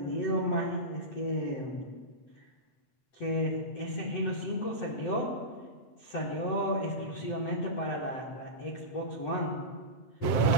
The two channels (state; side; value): late; right; 8.0 ms